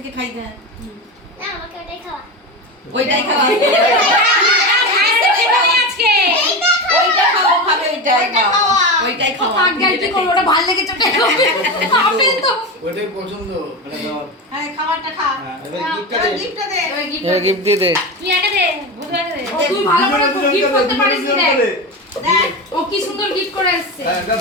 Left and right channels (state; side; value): normal; both; correlation 0.21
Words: খাই দে। না আমাকে ওটাই খাওয়া। ওইটাই খাওয়া। আজকে ওইটা খাওয়া খাবে ওইটাই খাওয়া। ওইটাই খাওয়া। কি করব, ওটা ভালো লেগেছে ওটা খাবে। খাবে তো ওটাই পছন্দ মানে দাও। হ্যাঁ খাবারটা খা। এবার গিফটটা দে। গিফটটা দে। গিফট দিয়ে দে। তুই একা দে, বুঝে দে। তুই ভালো করে গিফট করতে পারিস ও কি সুন্দর গিফট করে এসেছে।